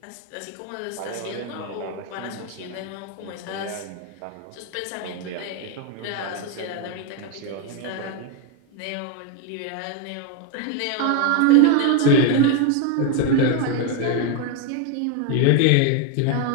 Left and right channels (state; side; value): different; both; correlation 0.01